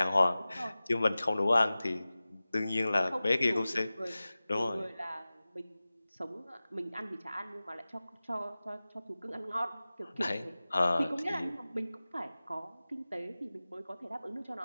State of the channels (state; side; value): inverted; both; correlation -0.97